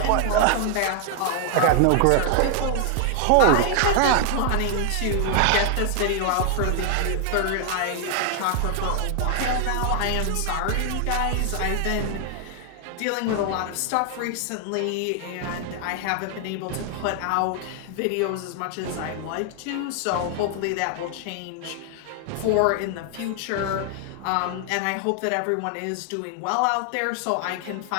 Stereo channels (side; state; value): both; different; correlation 0.00